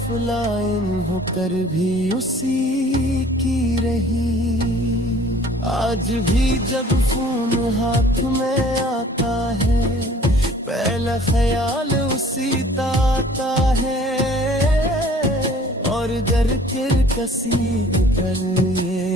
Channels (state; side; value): normal; both; correlation 0.52